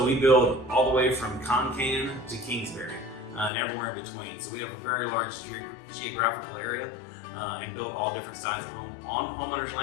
we build all the way from Concan to Kingsbury and everywhere in between. So we have a very large geographical area and build all different styles of home on homeowners'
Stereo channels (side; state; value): right; drops out; at 3.5 s